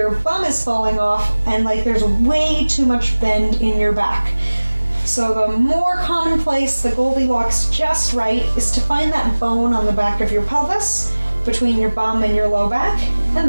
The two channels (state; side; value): inverted; both; correlation -1.00